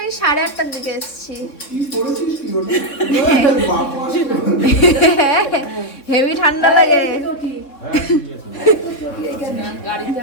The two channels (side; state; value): right; late; 3.8 ms